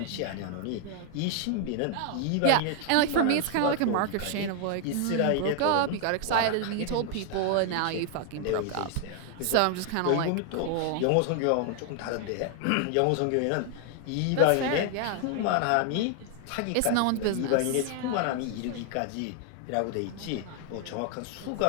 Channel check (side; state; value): both; different; correlation 0.00